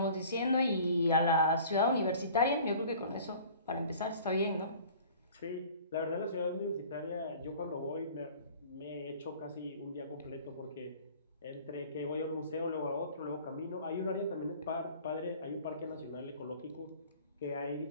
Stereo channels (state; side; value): inverted; both; correlation -0.47